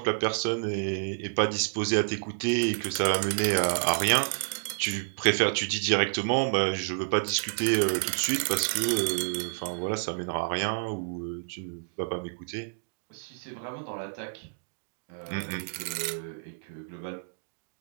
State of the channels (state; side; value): silent; left; digital silence